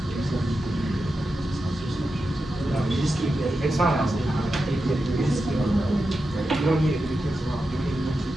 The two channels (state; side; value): normal; both; correlation 0.89